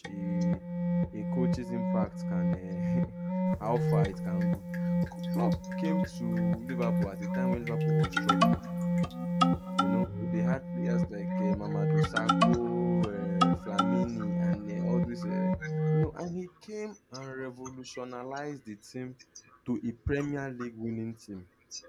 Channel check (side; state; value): both; identical; correlation 1.00